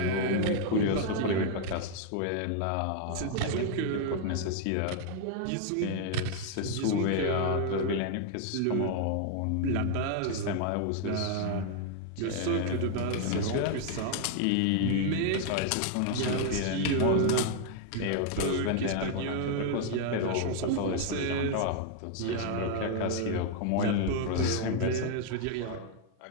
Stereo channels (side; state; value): both; different; correlation 0.00